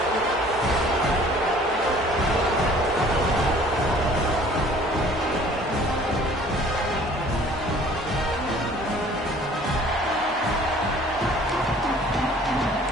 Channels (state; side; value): normal; both; correlation 0.52